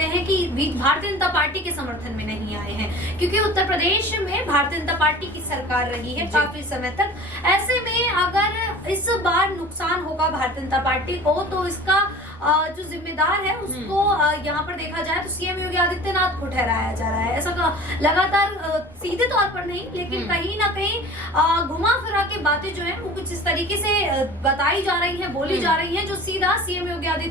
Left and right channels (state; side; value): normal; both; correlation 0.41